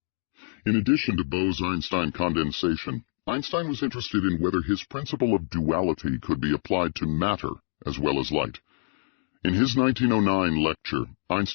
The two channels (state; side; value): silent; right; digital silence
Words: In addition to Bose-Einstein condensation, Einstein was interested in whether his principle of duality could be applied to matter as well as light. In his 1909 lecture,